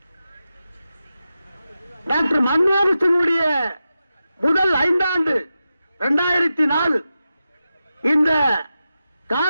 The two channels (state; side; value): inverted; both; correlation -0.91